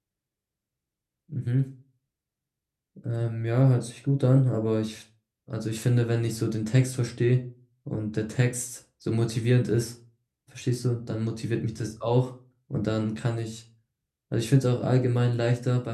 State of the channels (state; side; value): identical; both; correlation 1.00